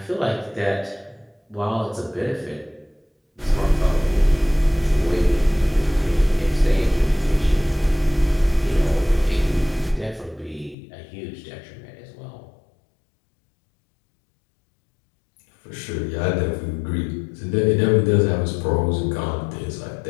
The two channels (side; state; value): right; drops out; at 10.8 s